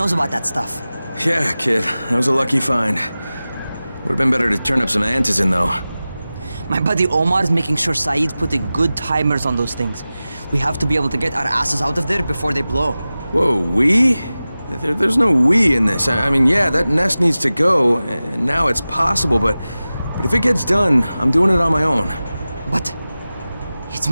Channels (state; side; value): inverted; both; correlation -0.96